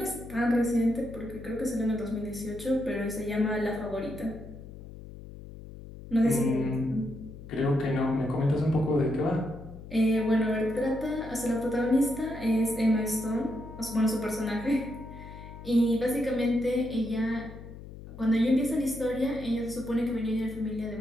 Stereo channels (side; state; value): left; noise; hum, 14 dB below the sound